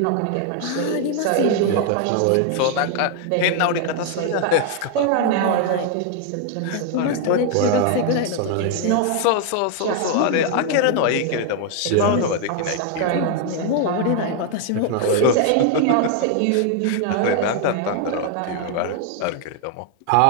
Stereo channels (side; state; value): both; different; correlation 0.00